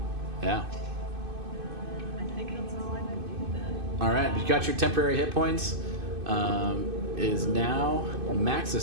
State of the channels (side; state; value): left; late; 2.5 ms